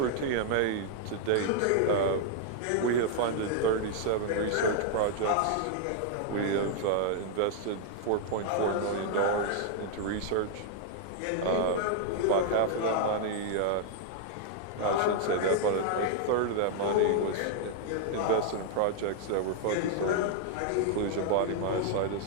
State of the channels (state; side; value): different; both; correlation -0.01